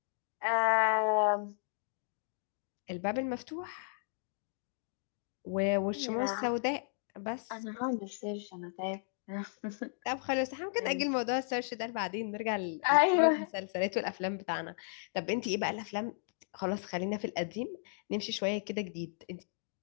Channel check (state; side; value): silent; right; digital silence